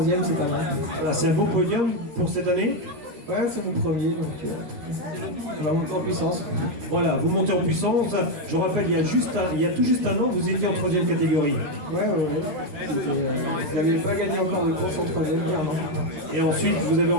c'est pas mal. Alors, c'est un beau podium pour cette année. Ouais, c'est mon premier, donc on va monter en puissance. Voilà, vous montez en puissance. Je rappelle, il y a tout juste un an, vous étiez en troisième catégorie. Ouais. Je n'avais pas gagné encore de course en troisième, clairement. Et ensuite, vous avez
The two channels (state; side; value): late; left; 13 ms